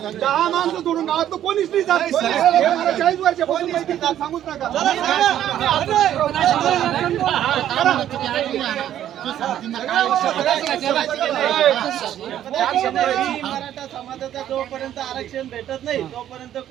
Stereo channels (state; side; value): quieter; left; 11.3 dB